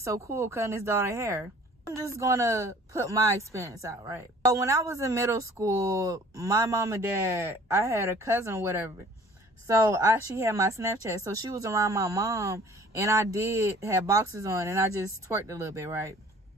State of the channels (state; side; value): normal; both; correlation 0.51